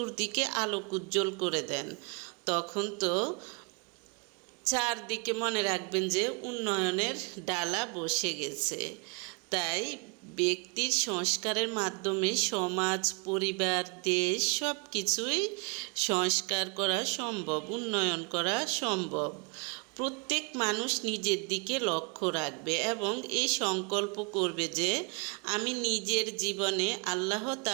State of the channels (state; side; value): quieter; left; 33.3 dB